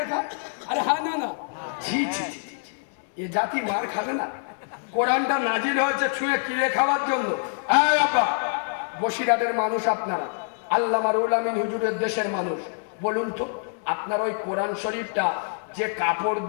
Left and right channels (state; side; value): silent; right; digital silence